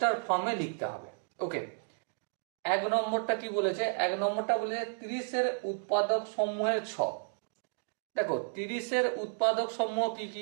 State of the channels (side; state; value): left; silent; digital silence